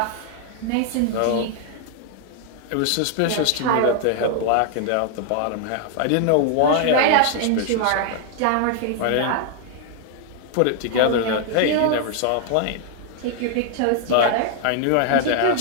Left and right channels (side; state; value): both; different; correlation 0.00